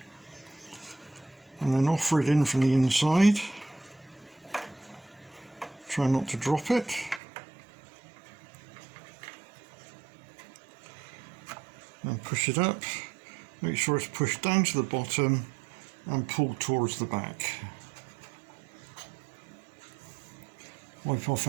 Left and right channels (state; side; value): drops out; left; at 7.2 s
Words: and then offer it in from the inside. Try not to drop it. And push it up, make sure it's pushed down to the bottom and pulled towards the back. Wipe off